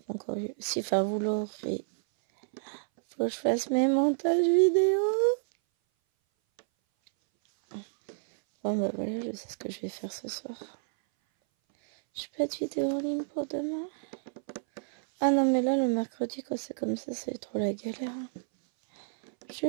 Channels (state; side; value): silent; left; 58 dB below the other